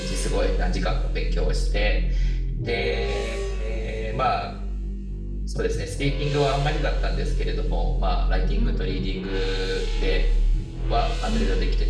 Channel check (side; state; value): both; identical; correlation 1.00